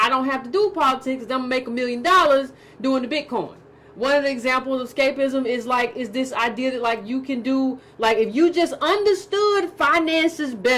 don't have to do politics, I'm gonna make $1 million doing the Bitcoin. One of the examples of escapism is this idea that like you can do, like if you just understood finances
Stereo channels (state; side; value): identical; both; correlation 1.00